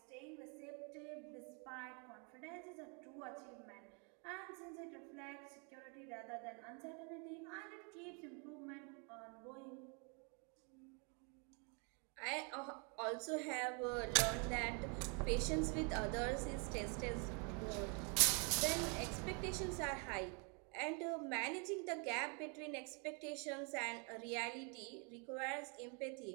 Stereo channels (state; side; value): quieter; left; 36.6 dB